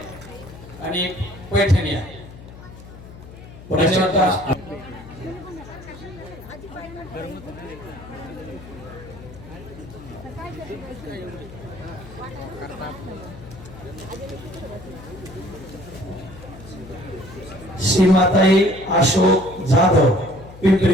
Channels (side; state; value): left; noise; hum, 16 dB below the sound